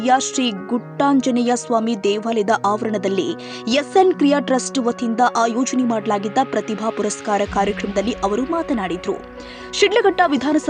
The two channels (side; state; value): both; identical; correlation 1.00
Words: ಶ್ರೀ ಗುಟ್ಟಾಂಜನೇಯ ಸ್ವಾಮಿ ದೇವಾಲಯದ ಆವರಣದಲ್ಲಿ ಎಸ್ಎನ್ ಕ್ರಿಯಾ ಟ್ರಸ್ಟ್ ವತಿಯಿಂದ ಆಯೋಜನೆ ಮಾಡಲಾಗಿದ್ದ ಪ್ರತಿಭಾ ಪುರಸ್ಕಾರ ಕಾರ್ಯಕ್ರಮದಲ್ಲಿ ಅವರು ಮಾತನಾಡಿದರು. ಶಿಡ್ಲಘಟ್ಟ